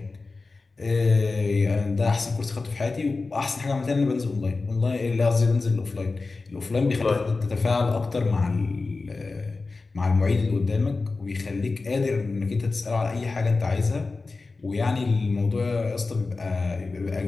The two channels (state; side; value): quieter; right; 3.8 dB